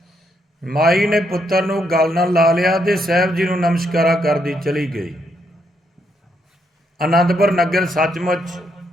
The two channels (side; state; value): both; normal; correlation 0.76